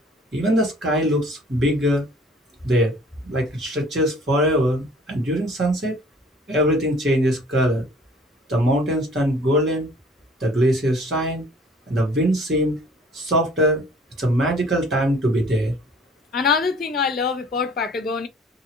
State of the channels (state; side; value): normal; both; correlation 0.52